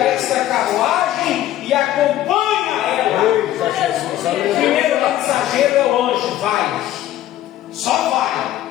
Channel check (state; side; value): quieter; right; 13.3 dB